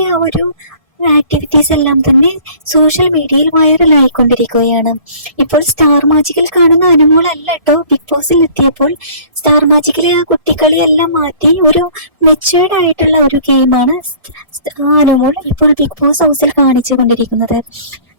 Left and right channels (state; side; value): late; left; 1.7 ms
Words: ആ ഒരു ആക്ടിവിറ്റീസ് എല്ലാം തന്നെ സോഷ്യൽ മീഡിയയിൽ വൈറലായിക്കൊണ്ടിരിക്കുകയാണ്. ഇപ്പോൾ സ്റ്റാർ മാജിക്കിൽ കാണുന്ന അനുമോൾ അല്ല കേട്ടോ ബിഗ് ബോസിൽ എത്തിയപ്പോൾ. സ്റ്റാർ മാജിക്കിലെ ആ കുട്ടികളെ എല്ലാം മാറ്റി ഒരു മെച്ചുവേർഡ് ആയിട്ടുള്ള ഒരു ഗെയിമാണ് അനുമോൾ ഇപ്പോൾ ബിഗ് ബോസ് ഹൗസിൽ കാണിച്ചു കൊണ്ടിരിക്കുന്നത്.